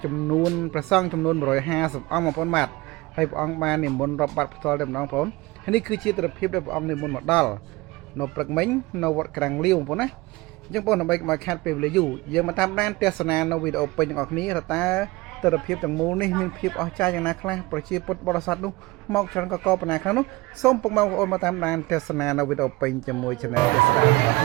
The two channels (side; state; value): left; quieter; 21.7 dB